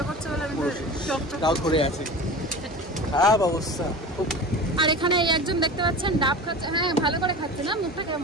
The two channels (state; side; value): normal; both; correlation 0.33